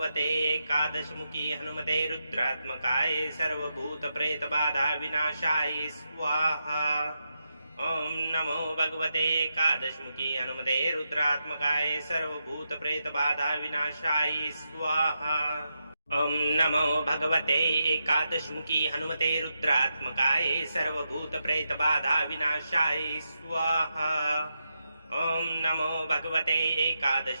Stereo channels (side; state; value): both; inverted; correlation -0.85